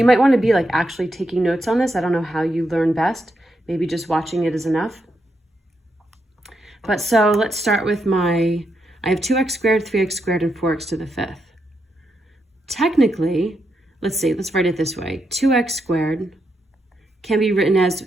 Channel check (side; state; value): both; normal; correlation 0.82